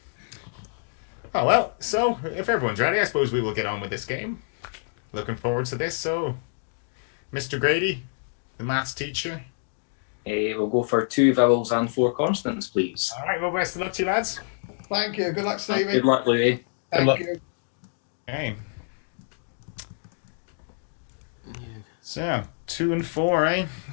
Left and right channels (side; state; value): right; silent; digital silence